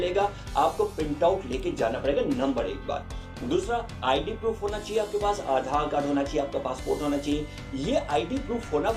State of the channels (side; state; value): both; identical; correlation 1.00